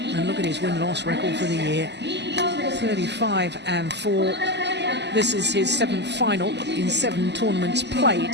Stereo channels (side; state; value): left; late; 0.50 ms